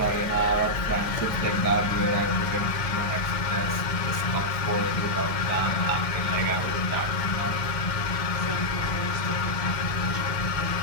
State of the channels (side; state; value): right; late; 2.1 ms